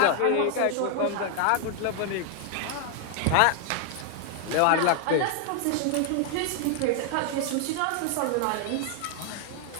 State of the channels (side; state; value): both; different; correlation 0.00